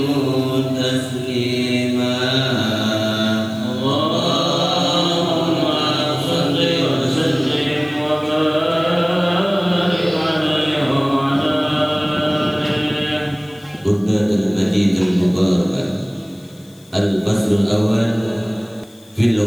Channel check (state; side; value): noise; left; hiss, 28 dB below the sound